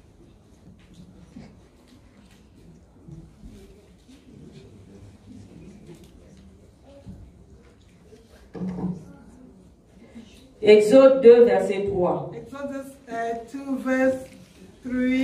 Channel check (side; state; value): both; identical; correlation 1.00